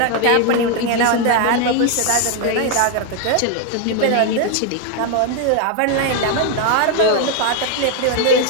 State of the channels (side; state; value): both; different; correlation 0.01